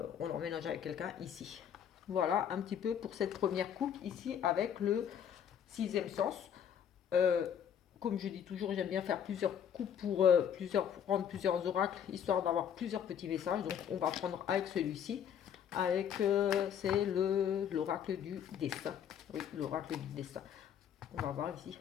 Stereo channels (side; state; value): right; quieter; 8.7 dB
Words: emménage avec quelqu'un ici. Voilà un petit peu pour cette première coupe ici avec le sixième sens. Euh, Comme je dis toujours, j'aime bien faire plusieurs coupes pour prendre plusieurs oracles, histoire d'avoir plusieurs petits messages. Donc on va prendre avec celui-ci, c'est l'oracle du destin. Oui, l'oracle du destin. On va voir ici